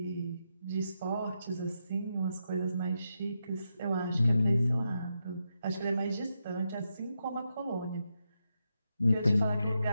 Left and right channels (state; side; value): inverted; both; correlation -0.85